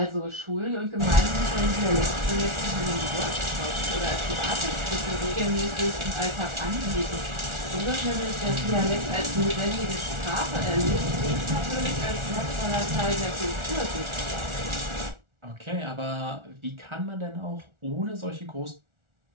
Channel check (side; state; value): left; late; 1.4 ms